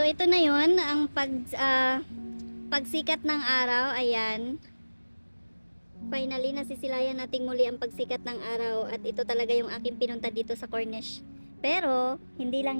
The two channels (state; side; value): inverted; both; correlation -1.00